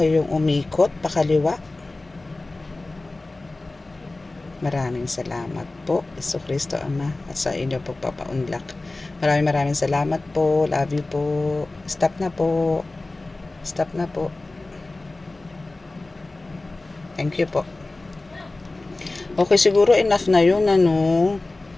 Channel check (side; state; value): right; quieter; 3.1 dB